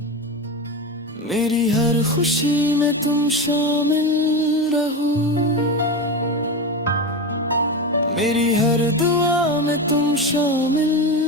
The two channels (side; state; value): both; normal; correlation 0.20